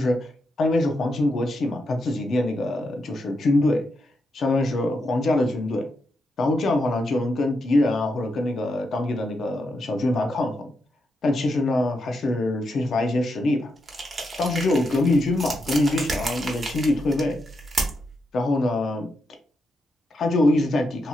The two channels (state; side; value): normal; both; correlation 0.84